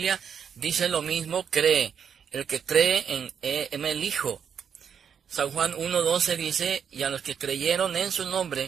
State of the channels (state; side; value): quieter; left; 7.6 dB